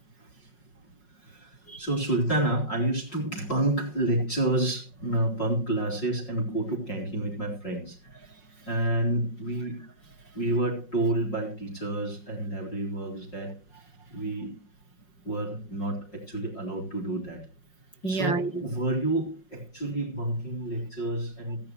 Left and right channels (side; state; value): right; late; 5.5 ms